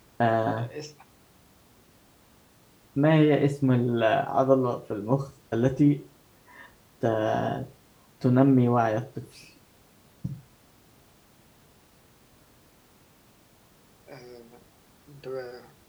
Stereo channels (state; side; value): identical; both; correlation 1.00